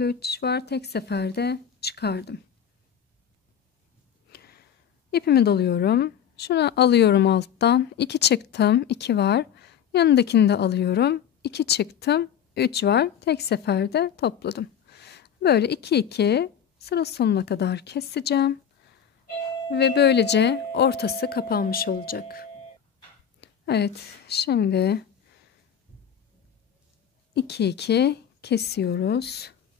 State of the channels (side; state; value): right; quieter; 8.6 dB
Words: 3 var, tek seferde çıkardım. İpimi doluyorum, şunu alıyorum alttan, 2 çıktım, 2 var, yanındakini de alıyorum, 2 çıktım, 3 var, tek seferde topladım. Böyle 2 2 sıra sonuna kadar keseceğim ve böylece ortası kapanmış olacak. Evet, şimdi 2 2 kesiyoruz.